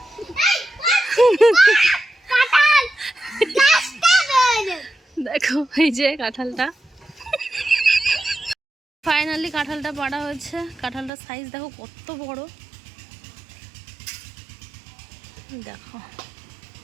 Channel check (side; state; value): left; drops out; at 11.1 s